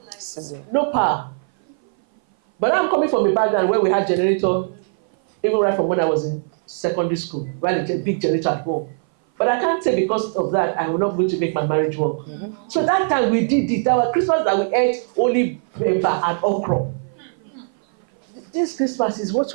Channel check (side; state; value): left; silent; 58 dB below the other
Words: Sizzle. No power. But I'm coming from a background where we had generator, even right from when I was in secondary school, we had a big generator at home. But I can't say because of that, I will not going to make my marriage work. Mm-hmm. So that time we did it. That was Christmas that we ate only pepper and okra. This Christmas is what